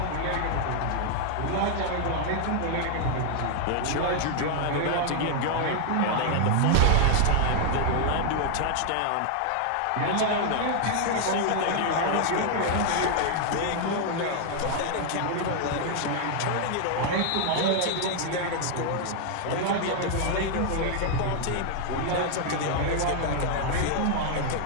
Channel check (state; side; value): different; both; correlation 0.00